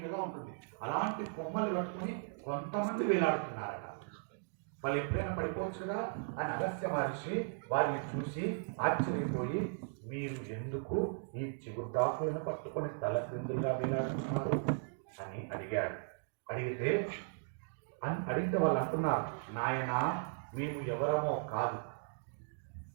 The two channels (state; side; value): silent; left; digital silence